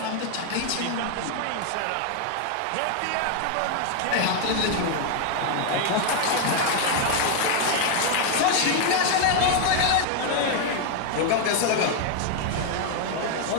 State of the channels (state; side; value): different; both; correlation 0.00